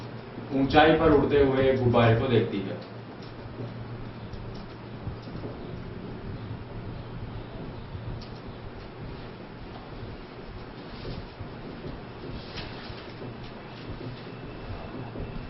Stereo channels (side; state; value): both; identical; correlation 1.00